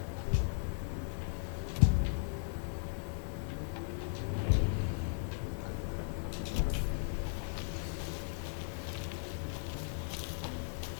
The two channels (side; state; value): right; silent; digital silence